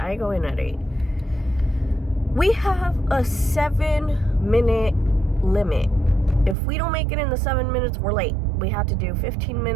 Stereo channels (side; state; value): left; drops out; at 6.6 s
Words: go in at 8. We have a 7-minute limit. If we don't make it in the 7 minutes, we're late. We have to do 15